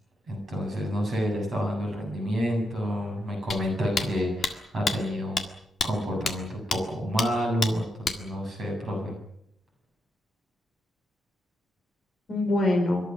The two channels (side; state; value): both; normal; correlation 0.83